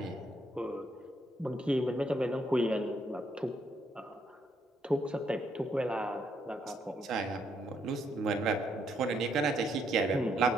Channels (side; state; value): both; normal; correlation 0.74